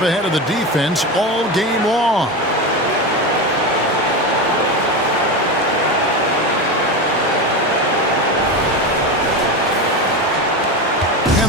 ahead of the defense all game long.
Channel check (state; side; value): normal; both; correlation 0.20